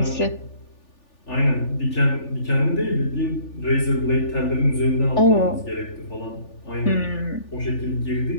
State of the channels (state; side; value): late; right; 3.4 ms